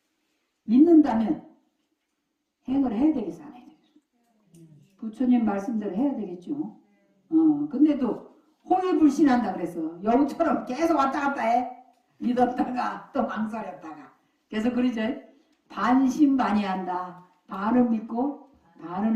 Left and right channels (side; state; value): both; identical; correlation 1.00